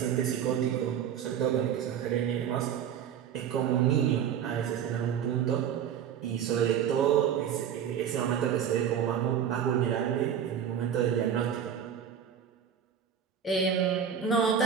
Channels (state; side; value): quieter; left; 8.7 dB